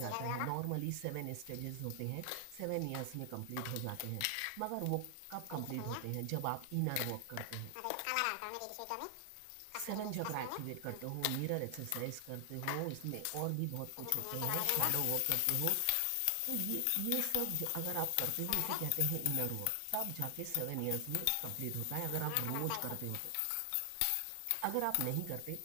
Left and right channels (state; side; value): different; both; correlation 0.00